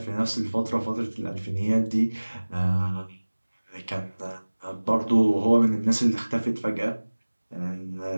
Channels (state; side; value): inverted; both; correlation -1.00